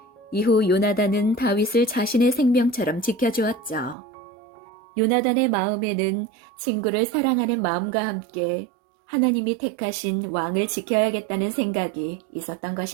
이후 요나단은 다윗을 자신의 생명처럼 지켜주었죠. 요나단의 마음에는 친구를 사랑하는 마음과 함께 하나님이 택하신 왕을 지켜야겠다는 생각이 있었던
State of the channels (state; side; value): drops out; left; at 4.0 s